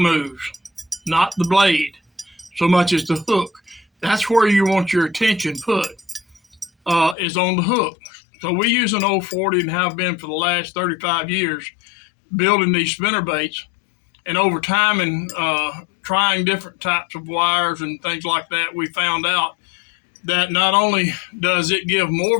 not the blade, so much as the hook. That's where you want your attention put, is on the hook. So we use an 040 and have been for the last 35 years building these spinnerbaits. And over time and trying different types of wires and things like that, we found out that not only does it give more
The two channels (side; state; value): right; drops out; at 7.2 s